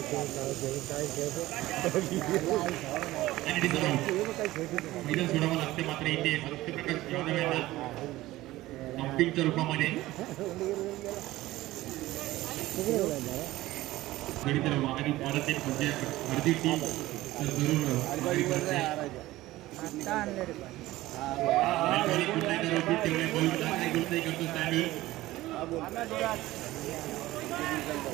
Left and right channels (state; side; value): quieter; left; 17.2 dB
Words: मैदान सोडावं लागते मात्र इथे सत्यप्रकाश यादव यांना अपीलच्या रूपामध्ये तर माघारी परत एक म्हणजे अर्धी टीम तर जरूर माघारी करते.